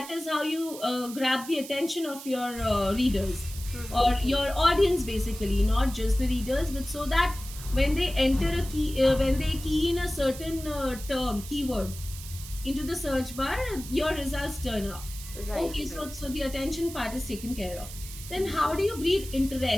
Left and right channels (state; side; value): noise; right; hiss, 13 dB below the sound